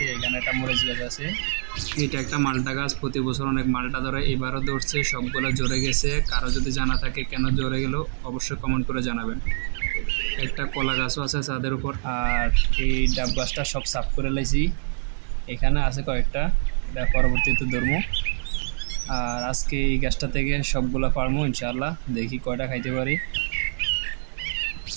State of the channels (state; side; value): silent; left; digital silence